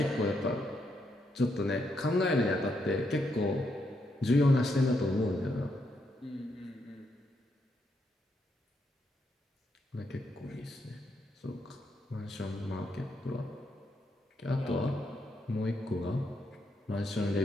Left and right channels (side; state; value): both; normal; correlation 0.79